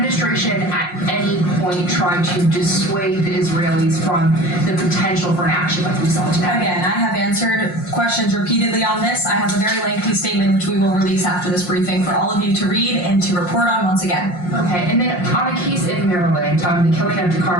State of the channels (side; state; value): right; late; 5.6 ms